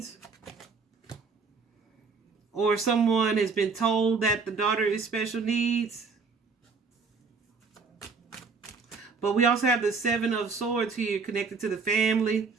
or someone has been told that the daughter is special needs. But we also have the 7 of Swords here connected to the family.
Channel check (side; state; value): left; quieter; 4.8 dB